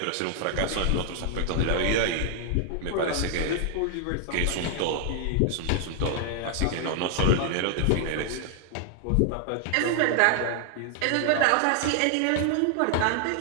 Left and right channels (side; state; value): both; different; correlation 0.00